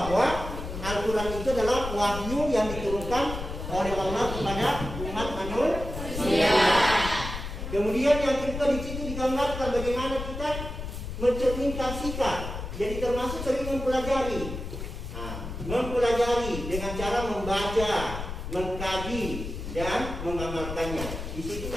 Al-Quran itu adalah wahyu yang diturunkan oleh Allah kepada umat manusia. Kemudian yang kedua di situ digambarkan bagaimana kita mencerminkan sikap. Jadi termasuk sering mempelajari dengan cara membaca, mengkaji dan mengamalkannya. Di situ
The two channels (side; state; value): left; noise; rumble, 7 dB below the sound